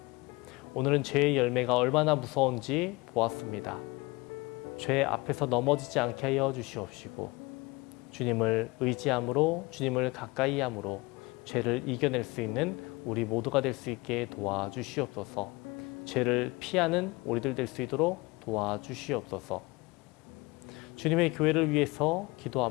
오늘은 죄의 열매가 얼마나 무서운지 보았습니다. 죄 앞에서 넘어지지 않게 하여 주시옵시고 주님을 의지함으로, 주님을 가까이 함으로 죄를 이겨낼 수 있는 우리 모두가 될 수 있게 도와주시옵소서. 죄를 피하는 우리들 될 수 있도록 도와주시옵소서. 주님의 교회를 위해서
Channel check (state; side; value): quieter; right; 24.0 dB